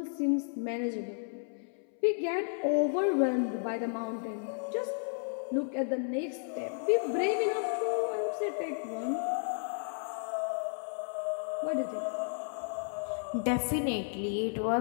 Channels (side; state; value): right; silent; 56 dB below the other